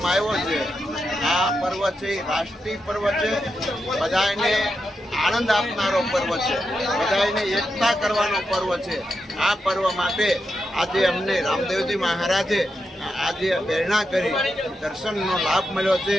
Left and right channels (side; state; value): both; normal; correlation 0.86